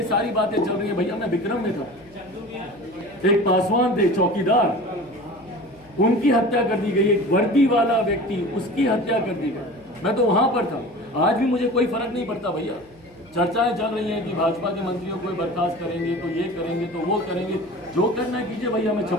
सारी बातें चल रही है भैया, मैं विक्रम में था, एक पासवान थे चौकीदार, उनकी हत्या कर दी गई। एक वर्दी वाला व्यक्ति, उसकी हत्या कर दी गई। मैं तो वहां पर था। आज भी मुझे कोई फर्क नहीं पड़ता भैया। चर्चाएं चल रही हैं कि भाजपा के मंत्रियों को बर्खास्त करेंगे, तो ये करेंगे, तो वो करेंगे। जो करना है कीजिए भैया, मैं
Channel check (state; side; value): noise; left; hum, 28 dB below the sound